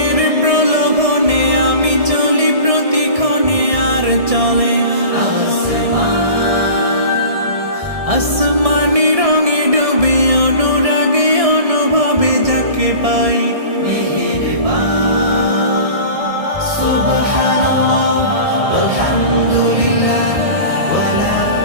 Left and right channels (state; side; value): late; left; 1.6 ms